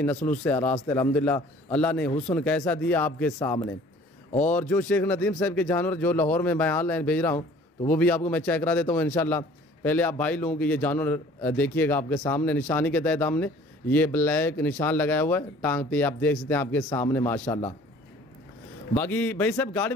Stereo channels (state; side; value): normal; both; correlation 0.51